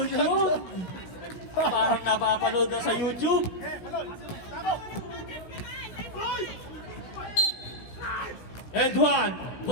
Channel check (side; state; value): right; late; 16 ms